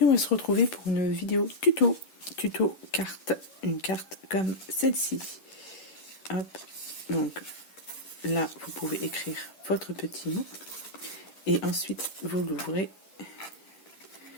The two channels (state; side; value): late; right; 10 ms